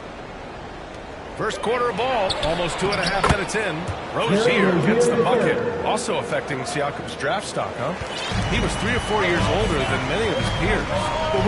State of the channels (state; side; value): identical; both; correlation 1.00